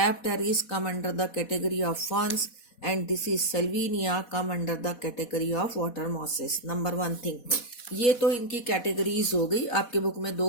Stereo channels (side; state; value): right; late; 4.1 ms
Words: come under the category of ferns, and this is Salvinia, come under the category of water mosses. Number one thing. ये तो इनकी categories हो गई. आपके book में